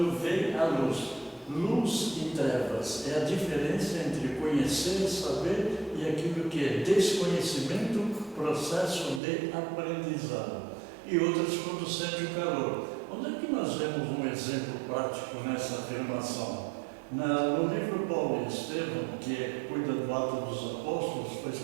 vê a luz. Luz e trevas é a diferença entre conhecer e saber e aquilo que é desconhecimento, processo de aprendizado. E outras quando sente o calor. Onde é que nós vemos um exemplo prático nessa afirmação? No livro Paulo e Estevão, que cuida do Ato dos Apóstolos, foi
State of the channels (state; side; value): drops out; left; at 9.2 s